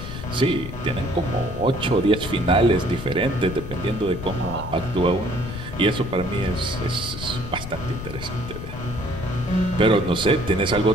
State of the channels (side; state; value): left; noise; rumble, 9 dB below the sound